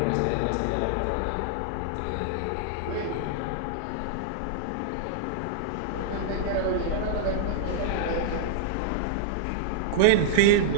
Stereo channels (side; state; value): both; different; correlation -0.01